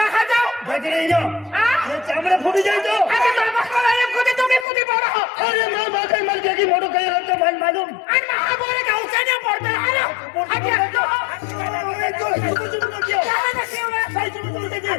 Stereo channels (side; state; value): right; drops out; at 4.7 s